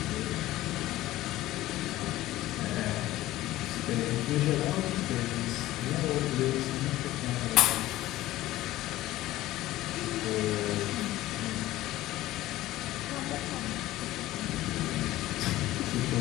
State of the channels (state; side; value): quieter; right; 16.0 dB